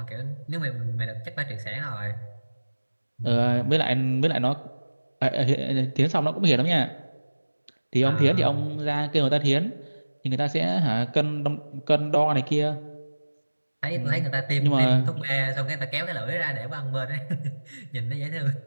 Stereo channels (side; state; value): both; inverted; correlation -1.00